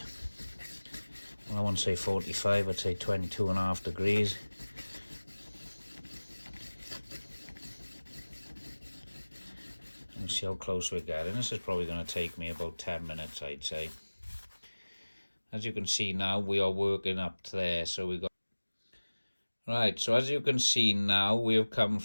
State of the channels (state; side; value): inverted; both; correlation -1.00